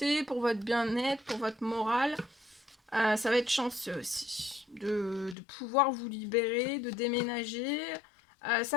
pour votre bien-être, pour votre morale. Ça va être chanceux aussi de pouvoir vous libérer, de déménager.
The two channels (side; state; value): right; drops out; at 5.4 s